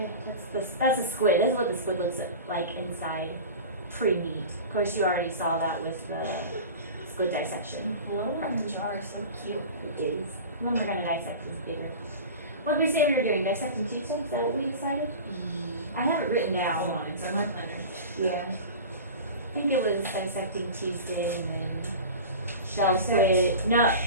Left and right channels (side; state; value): both; inverted; correlation -0.34